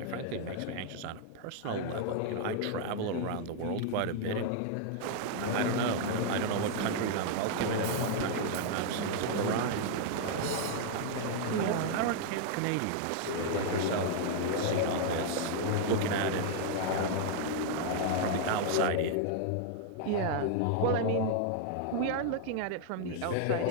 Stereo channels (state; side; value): different; both; correlation 0.00